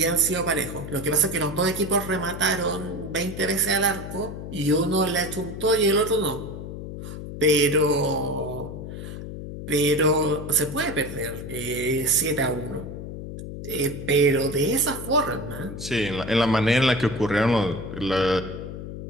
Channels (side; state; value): left; noise; hum, 9 dB below the sound